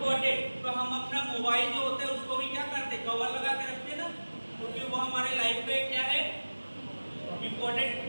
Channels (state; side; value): inverted; both; correlation -1.00